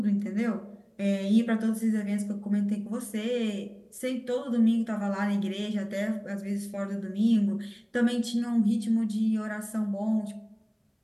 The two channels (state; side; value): identical; both; correlation 1.00